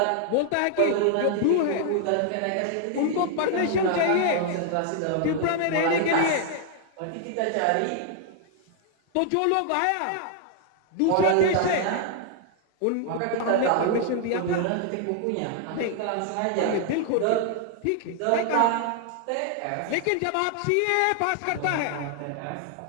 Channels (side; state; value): both; different; correlation 0.00